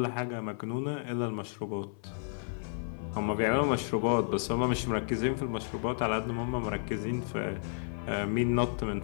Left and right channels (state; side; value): silent; right; 56 dB below the other